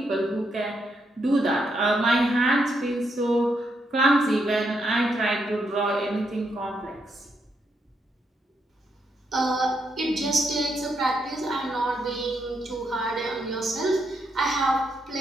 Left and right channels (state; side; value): normal; both; correlation 0.79